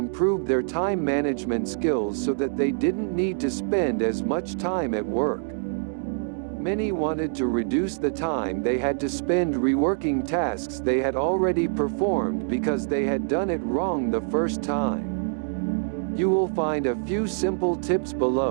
their time management skills so that they didn't need to spend as much time at work. Many wanted to reduce the time they had to spend reworking tasks they had already performed because they had done it wrong the first time. You will find a few simple tips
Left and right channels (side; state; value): left; silent; digital silence